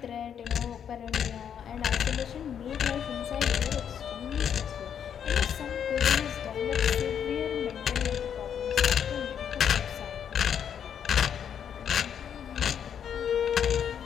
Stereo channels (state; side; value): quieter; right; 8.4 dB